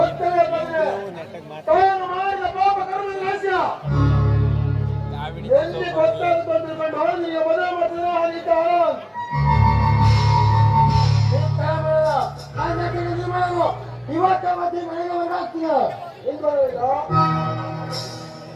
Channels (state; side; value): identical; both; correlation 1.00